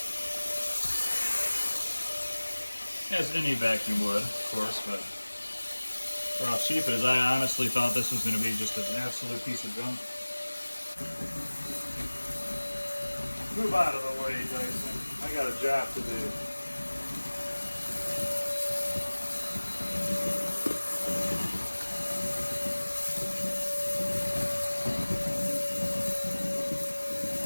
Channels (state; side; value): inverted; both; correlation -1.00